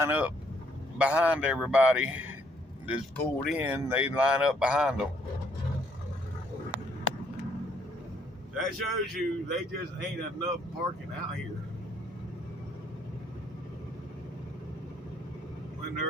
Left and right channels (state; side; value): normal; both; correlation 0.68